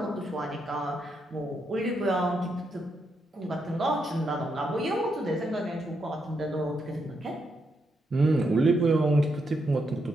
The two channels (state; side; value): normal; both; correlation 0.81